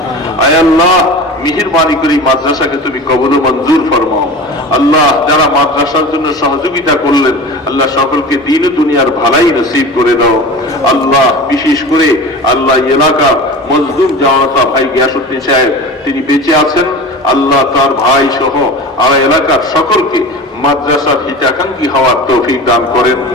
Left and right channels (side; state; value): both; normal; correlation 0.33